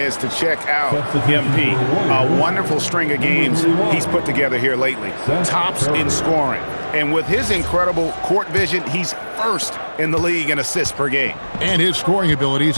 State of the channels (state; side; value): inverted; both; correlation -1.00